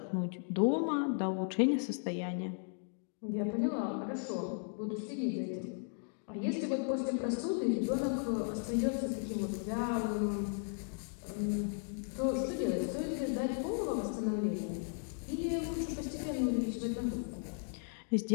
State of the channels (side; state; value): right; silent; 54 dB below the other